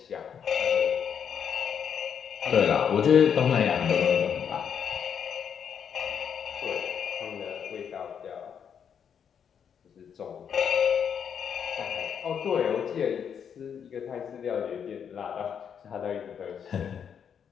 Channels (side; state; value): right; quieter; 7.7 dB